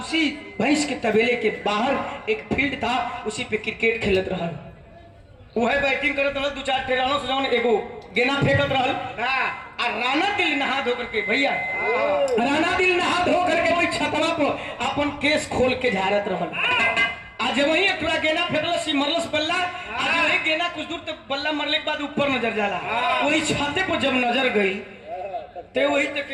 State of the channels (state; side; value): identical; both; correlation 1.00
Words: भैंस के तबेले के बाहर एक फील्ड था, उसी पे क्रिकेट खेलत रहा। वह बैटिंग करत रहल, 2-4 टेरानो से जौन एगो गेना फेंकत रहल। आ राणा दिल नहा धो करके भैया, राणा दिल नहा धो करके वही छतवा पर अपन केस खोल के झाड़त रहल। आज वही एक थोड़ा गेना फेंकलस, मरलस बल्ला। आज वही गेना कुछ दूर तक बल्ला मरले के बाद ऊपर नजर जाला। वही छाते पर जब नजर गई तो वही तक